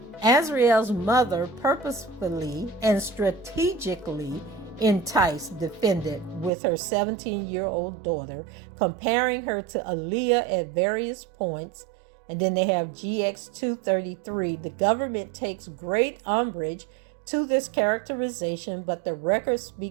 Azriel's mother purposefully and strategically enticed defendant with her 17-year-old daughter, comparing her to Aaliyah at various points. And then they have GX 233. The government takes great umbrage to this characterization, but the record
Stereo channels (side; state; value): left; drops out; at 6.5 s